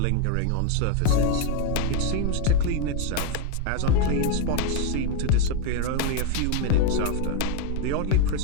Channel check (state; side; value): different; both; correlation 0.01